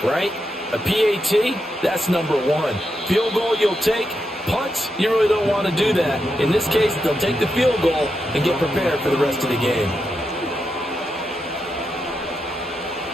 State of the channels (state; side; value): normal; both; correlation 0.85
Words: right? A PAT, that's number 1. Field goal you'll take. Punts, you really don't want to do that. In this case, they'll take the field goal and get prepared for the rest of the game.